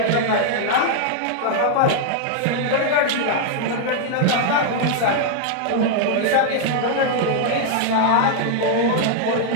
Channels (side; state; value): both; different; correlation 0.00